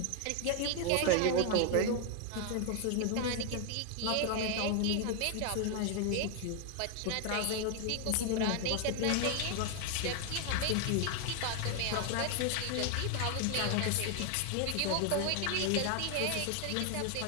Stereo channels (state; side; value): different; both; correlation 0.01